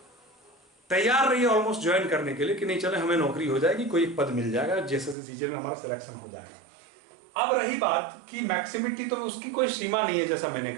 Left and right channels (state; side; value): drops out; left; at 5.2 s